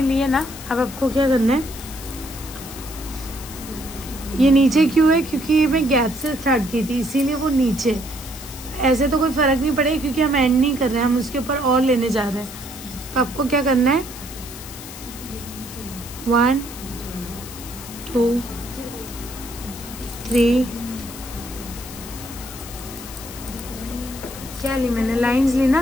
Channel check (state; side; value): noise; left; hiss, 13 dB below the sound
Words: लिए ना। अब आपको क्या करना है, ये नीचे क्यों है, क्योंकि ये मैं गैप से स्टार्ट की थी, इसीलिए वो नीचे। ऐसे तो कोई फर्क नहीं पड़ेगा क्योंकि हम एंड नहीं कर रहे हैं, हम उसके ऊपर और लेने जा रहे हैं। तो आपको क्या करना है, 1 2 3, क्या ली मैंने, लाइंस ली